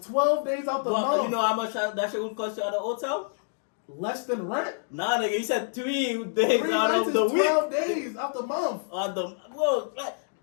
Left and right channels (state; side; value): silent; right; digital silence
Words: 12 days out the But month. you know how much that shit would cost you at a hotel? Less than rent. Nah, nigga, you said 3 days 3 out nights of is the 12 week. days out the month. Well, like,